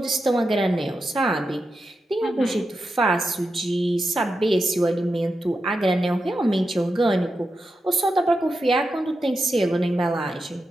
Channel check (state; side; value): normal; both; correlation 0.89